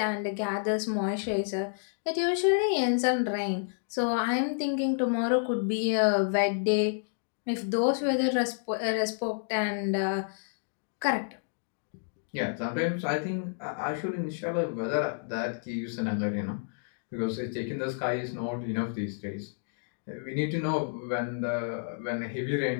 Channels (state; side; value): silent; right; digital silence